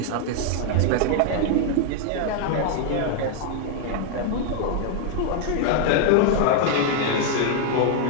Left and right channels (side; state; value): both; different; correlation 0.00